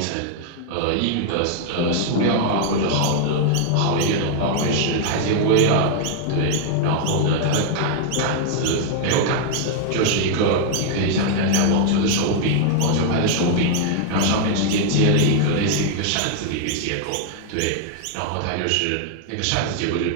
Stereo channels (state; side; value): different; both; correlation 0.00